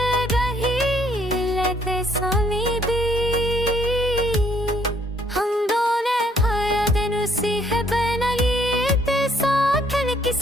रही लेते सुनी दी, हम दोनों हर दिन उसी है बनाई ते साथ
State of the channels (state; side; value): normal; both; correlation 0.66